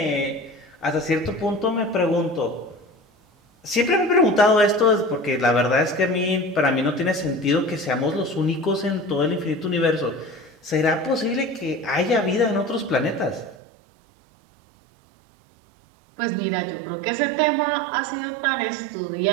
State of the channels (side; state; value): left; drops out; at 13.6 s